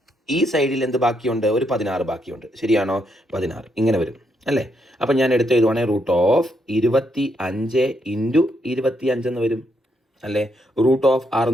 ഈ സൈഡിൽ എന്ത് ബാക്കിയുണ്ട്? ഒരു 16 ബാക്കിയുണ്ട്, ശരിയാണോ? 16 ഇങ്ങനെ വരും അല്ലേ? അപ്പം ഞാൻ എടുത്ത് എഴുതുവാണെങ്കിൽ റൂട്ട് ഓഫ് 25 ഇൻറ്റു 25 എന്ന് വരും അല്ലേ? റൂട്ട് ഓഫ്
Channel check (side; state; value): both; normal; correlation 0.77